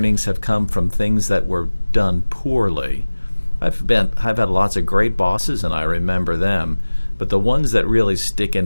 have come from things that were done poorly. I've had lots of great bosses and I remember them, but the ones that really stick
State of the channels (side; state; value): both; inverted; correlation -1.00